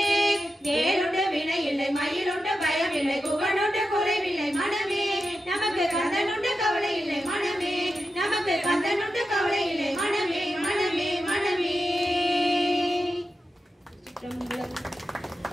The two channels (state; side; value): normal; both; correlation 0.90